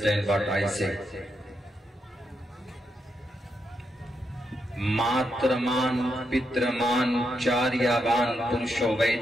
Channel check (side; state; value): both; normal; correlation 0.82